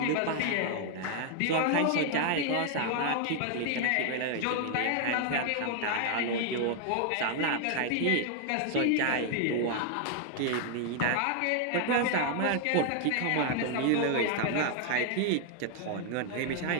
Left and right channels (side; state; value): both; different; correlation 0.00